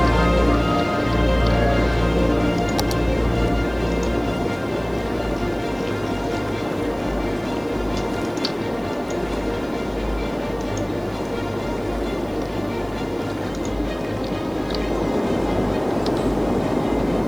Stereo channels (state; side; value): noise; right; hiss, 27 dB below the sound